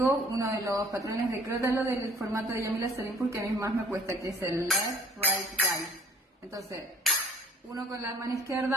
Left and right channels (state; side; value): normal; both; correlation 0.56